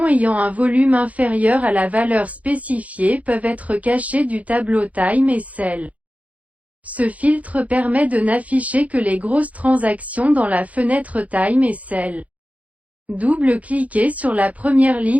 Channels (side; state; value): left; late; 0.069 ms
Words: ayant un volume inférieur à la valeur spécifiée peuvent être cachées du tableau Time SL. Ce filtre permet de n'afficher que les grosses transactions dans la fenêtre Time SL. Double-cliquez sur la première